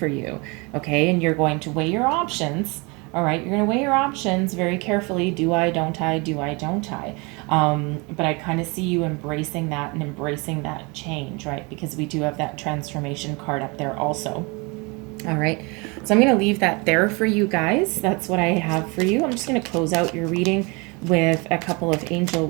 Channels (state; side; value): quieter; left; 28.5 dB